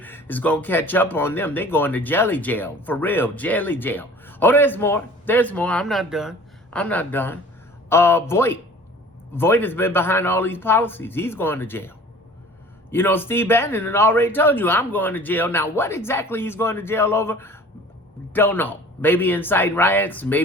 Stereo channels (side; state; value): both; normal; correlation 0.46